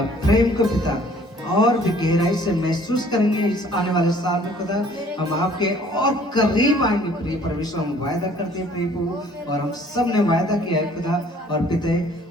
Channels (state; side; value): normal; both; correlation 0.56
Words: प्रेम को पिता और भी गहराई से महसूस करेंगे इस आने वाले साल में खुदा। हम आपके और करीब आएंगे प्रिय परमेश्वर, हम वायदा करते हैं प्रिय प्रभु, और हम सब ने वायदा किया है खुदा, और पिता